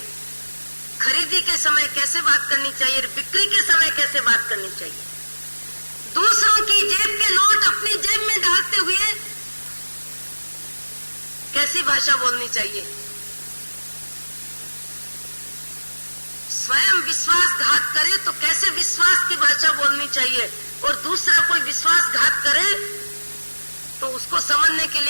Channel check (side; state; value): both; inverted; correlation -1.00